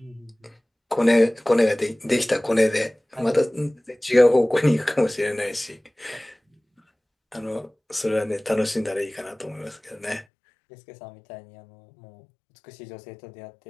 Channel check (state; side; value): drops out; right; at 10.2 s